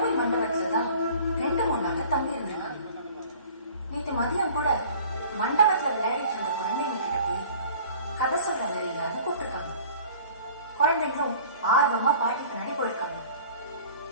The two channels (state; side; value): inverted; both; correlation -0.47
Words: மண்டபத்துல தான் 2-3 நாள் தங்கி இருந்திருக்காங்க. நேற்று மதியம் கூட மண்டபத்துல விளையாடிட்டு இருந்த குழந்தைங்க கிட்ட போய் கதை சொல்ற மாதிரி இல்லாம கூப்பிட்டுருக்காங்க. குழந்தைங்களும் ஆர்வமா பாட்டி பின்னாடி போயிருக்காங்க.